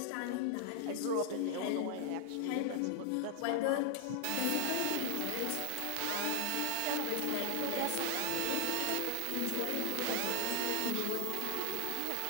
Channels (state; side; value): different; both; correlation -0.01